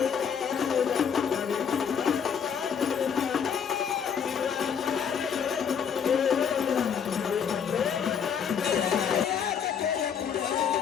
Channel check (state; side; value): quieter; right; 7.4 dB